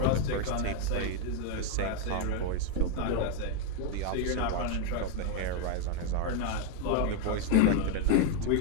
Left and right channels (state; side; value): different; both; correlation 0.00